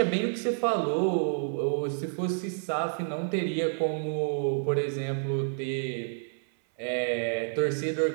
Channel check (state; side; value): silent; left; 58 dB below the other